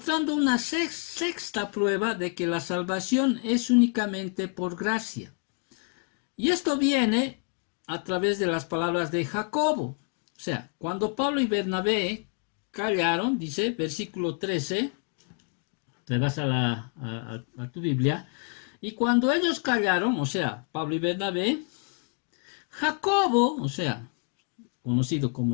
una sexta prueba de que la salvación es únicamente por gracia. Y esto viene a través de las palabras de Jacobo. O sea, cuando Pablo y Bernabé callaron, dice, versículo 13, te vas a tu Biblia, y cuando ellos callaron, o sea, Pablo y Bernabé, Jacobo, o sea, conocido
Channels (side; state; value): right; quieter; 37.8 dB